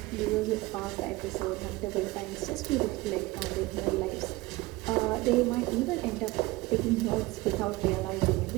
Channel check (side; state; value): left; quieter; 20.7 dB